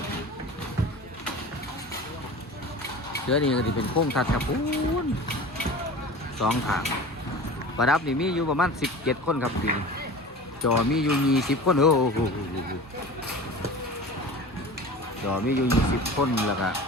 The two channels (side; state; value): both; normal; correlation 0.36